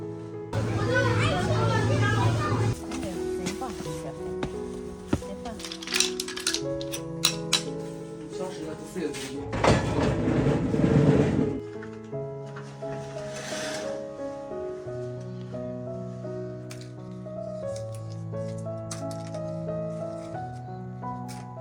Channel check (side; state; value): both; identical; correlation 1.00